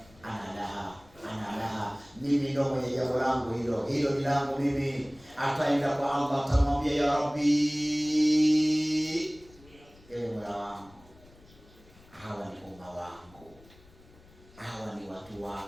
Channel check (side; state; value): left; noise; rumble, 25 dB below the sound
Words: ana laha, mimi ndio mwenye jambo langu hilo ni langu mimi. Ataenda kwa Allah, atamwambia ya Rabbi, ewe Mola wangu, hawa ni umma wangu, hawa ni watu